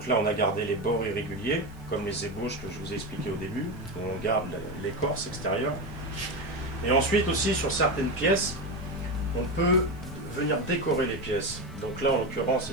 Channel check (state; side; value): noise; right; hiss, 30 dB below the sound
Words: là on a gardé les bords irréguliers, comme les ébauches que je vous ai expliqué au début. On garde l'écorce extérieure. Et ensuite aussi sur certaines pièces, on peut venir décorer les pièces. Donc là en l'occurrence